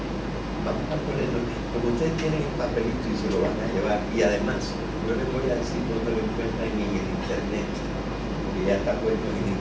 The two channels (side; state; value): both; identical; correlation 1.00